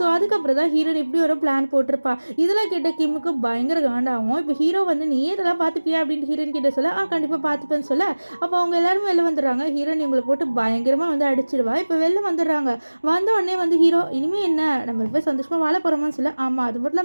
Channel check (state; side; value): inverted; both; correlation -1.00